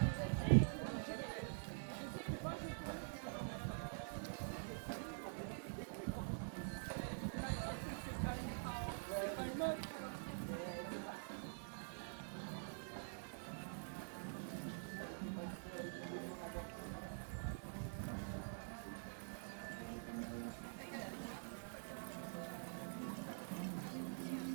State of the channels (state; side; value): silent; left; digital silence